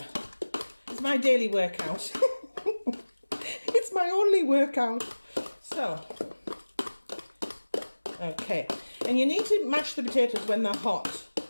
It's my daily workout. It's my only workout. So, okay, and you need to mash the potatoes when they're hot.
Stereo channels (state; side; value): inverted; both; correlation -1.00